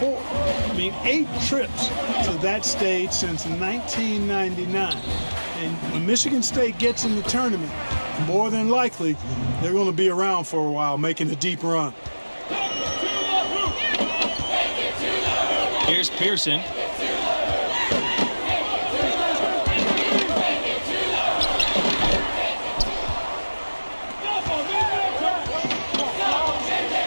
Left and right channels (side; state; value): both; inverted; correlation -1.00